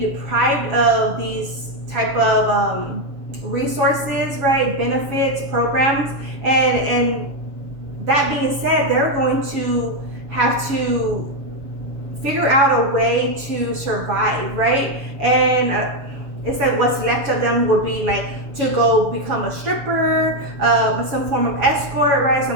of these type of resources, right? Benefits, programs, and that being said, they're going to have to figure out a way to survive, right? And it's like what's left of them would be like to go become a stripper, some form of escort, right?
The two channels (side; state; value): left; late; 7.2 ms